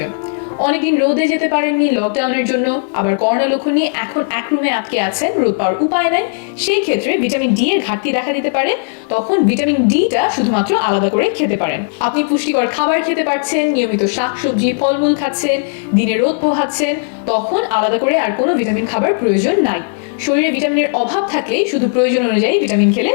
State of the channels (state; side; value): silent; right; digital silence